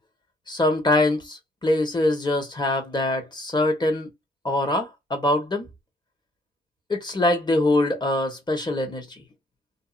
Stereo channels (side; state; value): both; normal; correlation 0.65